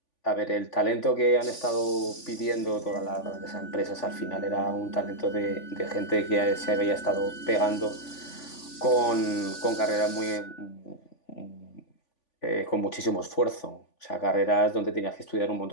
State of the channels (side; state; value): right; late; 3.5 ms